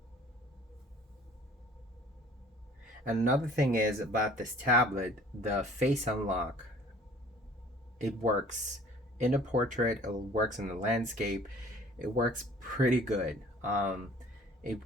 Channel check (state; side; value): normal; both; correlation 0.51